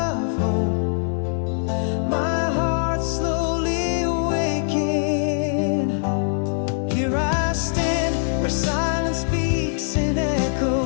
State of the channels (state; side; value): silent; right; digital silence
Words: hope, my heart slowly awaking. Here I stand where silence speaks in